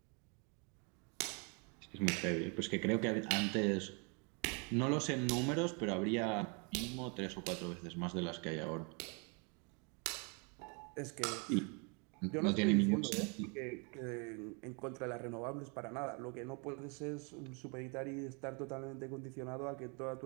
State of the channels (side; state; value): left; quieter; 34.5 dB